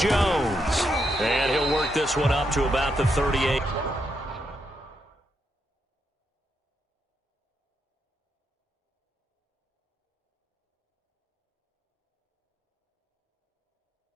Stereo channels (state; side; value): normal; both; correlation 0.81